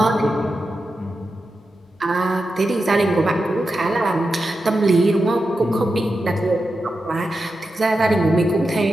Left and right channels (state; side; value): normal; both; correlation 0.90